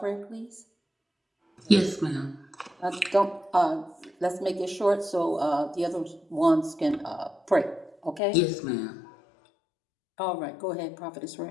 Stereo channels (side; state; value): right; drops out; at 8.2 s